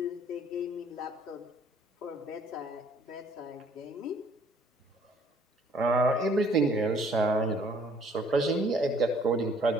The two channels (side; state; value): both; normal; correlation 0.60